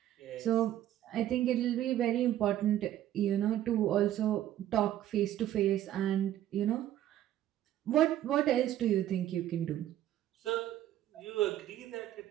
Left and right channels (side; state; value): left; quieter; 12.5 dB